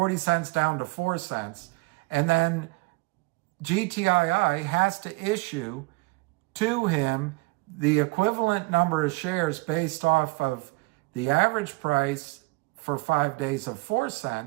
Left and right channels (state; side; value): quieter; left; 24.9 dB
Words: cents down to 4 cents. And then GTII has to issue to him the equivalent number of shares based off of the average price for 5 days of 4